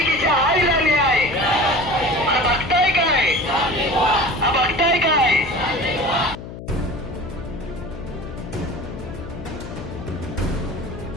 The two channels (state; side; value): noise; left; hum, 11 dB below the sound